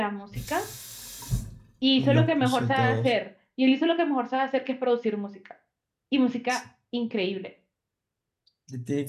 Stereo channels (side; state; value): both; identical; correlation 1.00